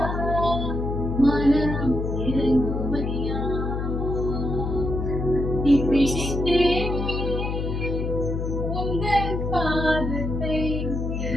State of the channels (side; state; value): left; noise; hum, 2 dB below the sound